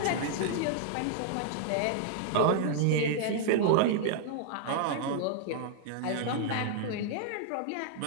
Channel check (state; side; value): different; both; correlation -0.01